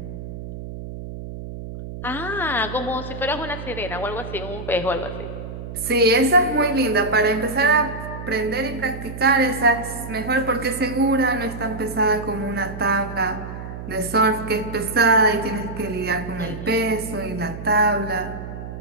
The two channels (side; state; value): right; noise; hum, 10 dB below the sound